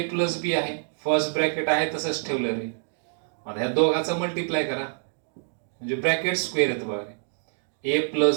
प्लस बी आहे, फर्स्ट ब्रॅकेट आहे तसंच ठेवलं रे. आता ह्या दोघाचा मल्टिप्लाय करा म्हणजे ब्रॅकेट स्क्वेअर येतं बघा रे. A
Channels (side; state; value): left; silent; digital silence